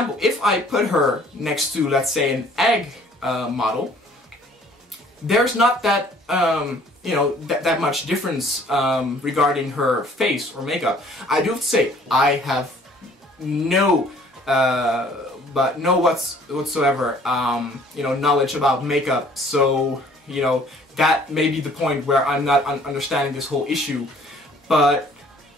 if I put her next to, let's say, an egg model, there's not that you know, that much difference regarding her face or makeup. I do have to say, I have no whatsoever you know, knowledge about makeup, so you know, that may be the point where I'm not understanding this whole issue. But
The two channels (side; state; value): both; normal; correlation 0.56